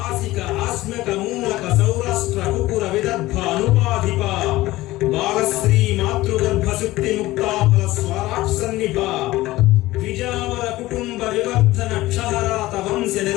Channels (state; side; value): quieter; right; 17.8 dB